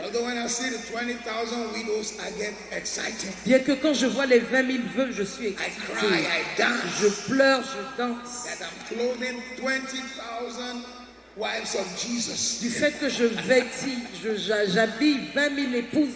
Although when I see the 20,000 widows, I get excited. Bien que quand je vois les 20 000 veuves, je suis I excitée. cry, I dance. Je pleure, je danse. That I'm clothing 20,000 wives of Jesus. Du fait que je vêtis, j'habille 20 000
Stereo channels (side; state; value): both; identical; correlation 1.00